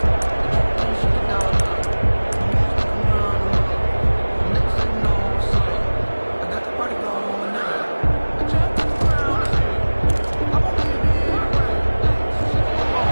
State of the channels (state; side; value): inverted; both; correlation -1.00